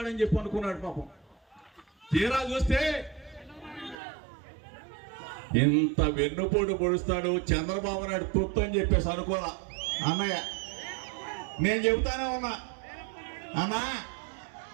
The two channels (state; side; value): drops out; left; at 4.0 s